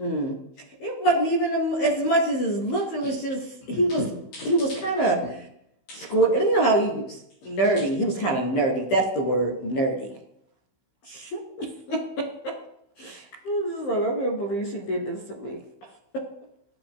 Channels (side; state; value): right; late; 15 ms